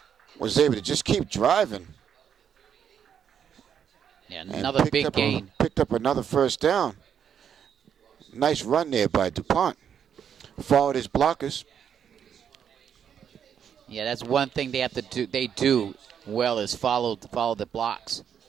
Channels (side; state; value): left; quieter; 8.3 dB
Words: was able to just keep driving. Yeah, And another big gain. picked up another first down. Nice run there by DuPont. Followed his blockers. Yeah, that's one thing they have to do. They do well is follow the blocks.